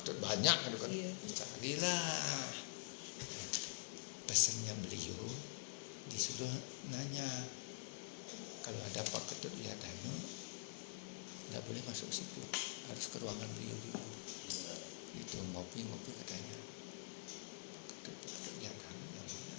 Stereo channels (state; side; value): silent; right; digital silence